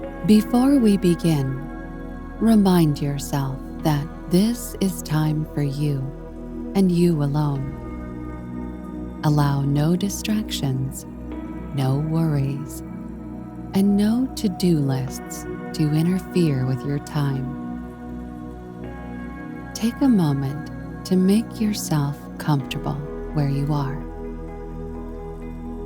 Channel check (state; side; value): identical; both; correlation 1.00